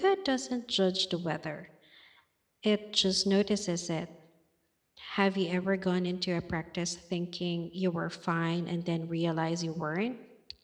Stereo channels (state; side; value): identical; both; correlation 1.00